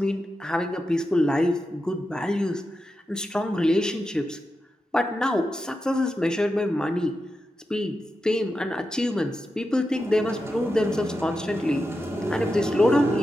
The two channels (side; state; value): both; normal; correlation 0.89